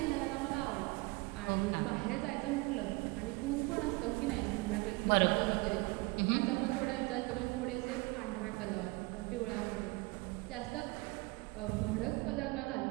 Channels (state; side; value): quieter; left; 24.9 dB